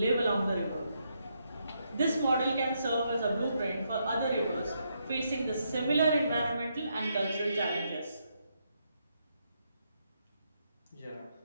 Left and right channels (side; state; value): both; inverted; correlation -0.79